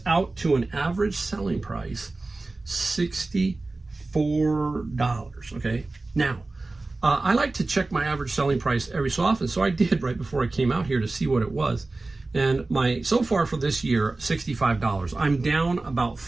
out to an average selling price $64. Okay. Now, I like to check my average selling price every so often, so I did right before I came out here to see what it was. And so far for this year, $65. I'm down about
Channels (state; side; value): quieter; left; 3.3 dB